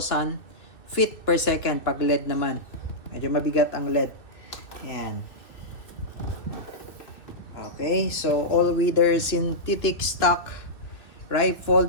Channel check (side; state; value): right; late; 2.6 ms